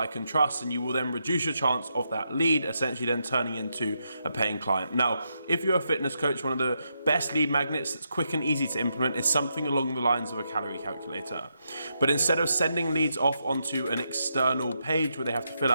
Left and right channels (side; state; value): both; inverted; correlation -0.82